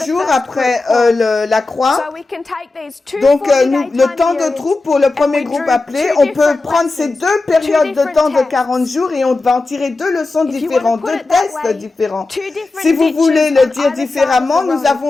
jours après la croix. Donc, le temps de troupe pour le premier groupe appelé, on peut prendre ces deux périodes de temps de 40 jours et on va en tirer deux leçons différentes, deux tests différents. Si vous voulez le dire différemment, nous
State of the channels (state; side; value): quieter; right; 3.4 dB